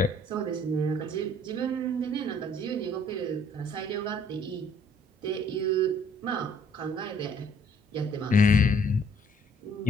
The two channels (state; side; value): normal; both; correlation 0.61